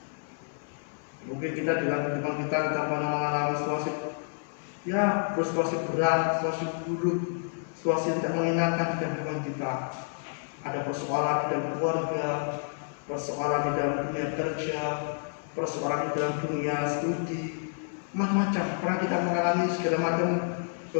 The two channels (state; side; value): silent; right; 58 dB below the other